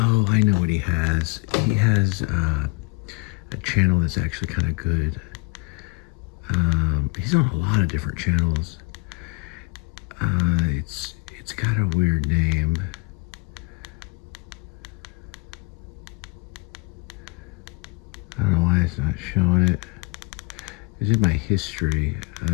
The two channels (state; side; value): quieter; right; 27.3 dB